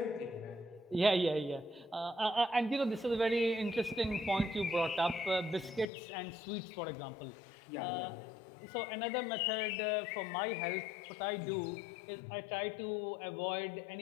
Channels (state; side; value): drops out; right; at 5.9 s